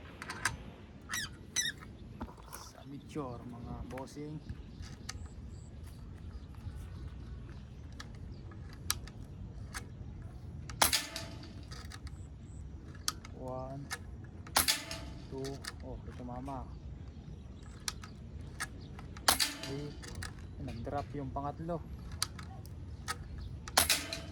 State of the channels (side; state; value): both; identical; correlation 1.00